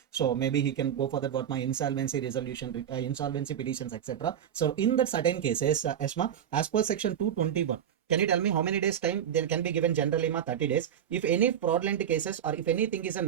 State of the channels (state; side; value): quieter; left; 9.4 dB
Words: So maybe he can go for that what my insolvency resolution, insolvency petitions, etc. So in that certain cases, ESMA, as per section 221, can you tell me how many days time there can be given generally ma 30 days? If any fraudulent cases or if anything is